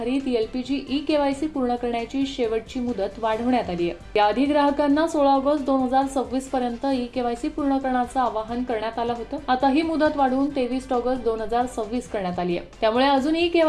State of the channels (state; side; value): identical; both; correlation 1.00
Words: एलपीजी ई-केवायसी पूर्ण करण्याची शेवटची मुदत वाढवण्यात आली आहे। याआधी ग्राहकांना 16 ऑगस्ट 2026 पर्यंत ई-केवायसी पूर्ण करण्याचं आवाहन करण्यात आलं होतं। आता ही मुदत वाढवून 23 ऑगस्ट 2026 करण्यात आली आहे। त्यामुळे अजून